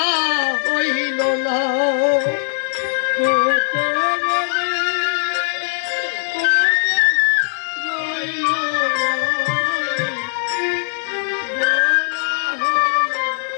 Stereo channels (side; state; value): right; silent; digital silence